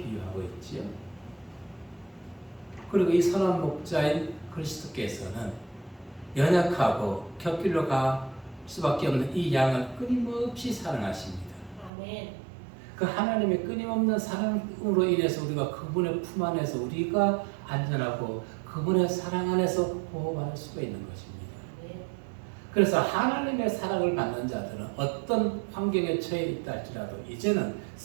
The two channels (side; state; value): left; drops out; at 11.9 s